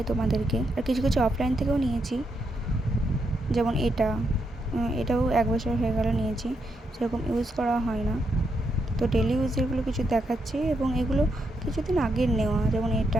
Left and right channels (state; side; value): normal; both; correlation 0.81